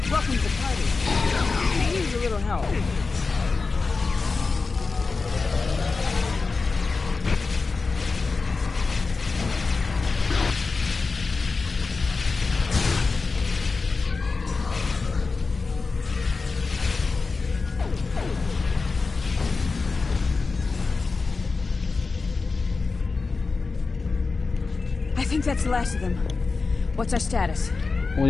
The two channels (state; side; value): quieter; right; 4.2 dB